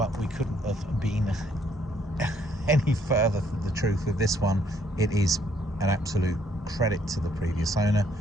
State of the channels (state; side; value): normal; both; correlation 0.68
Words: we couldn't have been any further from the truth with this one. It is an absolute credit to the previous owner,